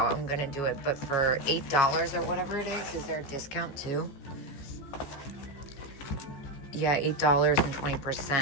I'm going to do it, but for $8 or whatever it is there a discount too? Yeah, $8 and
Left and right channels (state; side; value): late; right; 14 ms